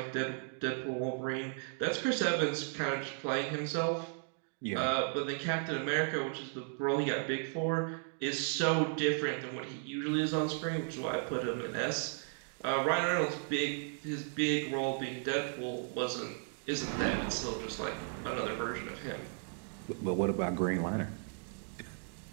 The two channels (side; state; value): left; silent; 54 dB below the other